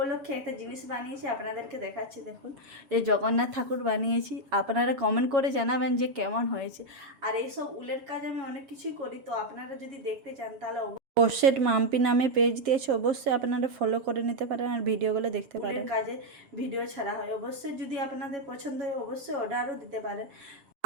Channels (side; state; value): left; late; 7.5 ms